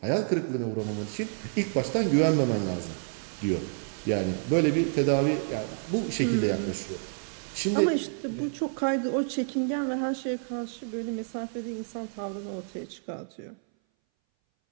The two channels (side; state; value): left; silent; 59 dB below the other